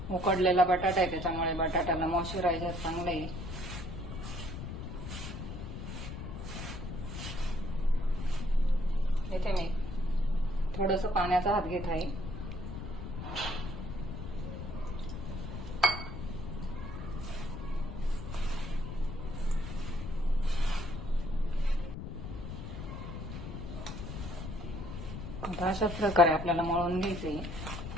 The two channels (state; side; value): noise; left; rumble, 7 dB below the sound